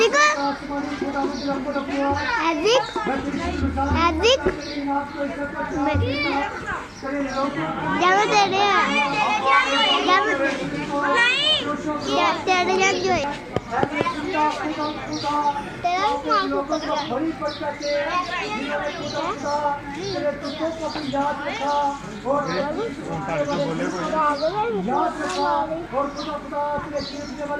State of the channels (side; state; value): both; identical; correlation 1.00